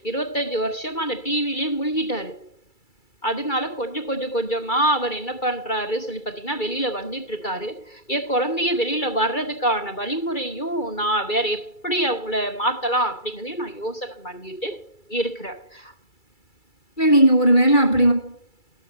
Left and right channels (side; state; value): right; late; 2.3 ms